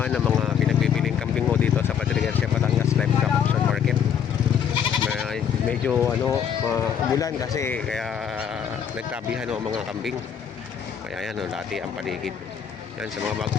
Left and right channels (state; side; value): quieter; right; 8.0 dB